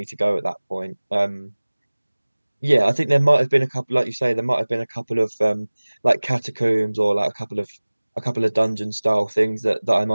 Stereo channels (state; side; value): inverted; both; correlation -1.00